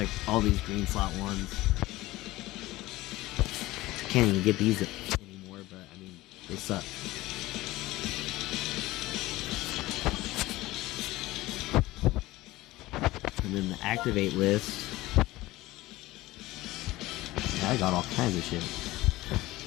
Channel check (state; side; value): quieter; right; 18.2 dB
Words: all these green slot ones. Can't even get these anymore, but, I mean, they suck. And then the activate list. Yeah, I got all kinds of shit.